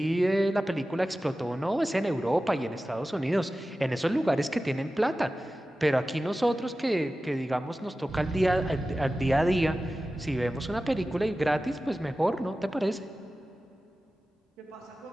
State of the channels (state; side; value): normal; both; correlation 0.95